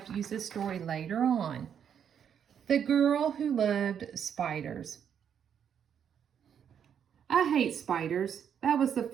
to use this story later on. The Girl Who Loved Spiders. I hate spiders. That was the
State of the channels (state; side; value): quieter; left; 8.3 dB